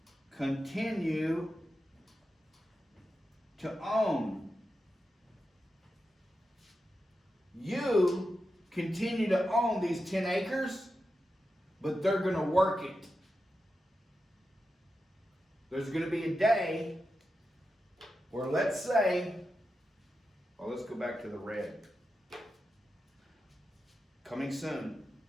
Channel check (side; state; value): both; normal; correlation 0.90